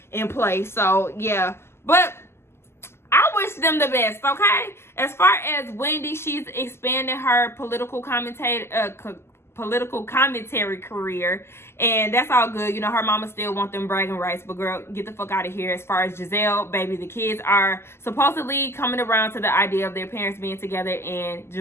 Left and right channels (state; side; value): late; right; 0.12 ms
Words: in place. So yeah, but I wish them the best, okay? As far as Wendy, she's expanding her political commentary career, and that's all good. You know, her mama still want them bragging rights, but girl, get the fuck out of here. As far as Giselle, baby, the kids are supposedly coming around to the idea of their parents being together, and